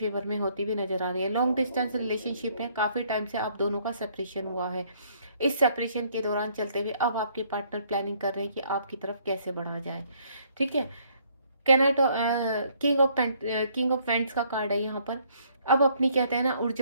में होती हुई नजर आ रही है। लॉन्ग डिस्टेंस रिलेशनशिप है, काफी टाइम से आप दोनों का सेपरेशन हुआ है। इस सेपरेशन के दौरान चलते हुए अब आपके पार्टनर प्लानिंग कर रहे हैं कि आपकी तरफ कैसे बढ़ा जाए। ठीक है। कैनाटो किंग ऑफ पेंट्स का कार्ड है यहाँ पर। अब अपनी कहते हैं ना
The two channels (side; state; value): both; inverted; correlation -0.65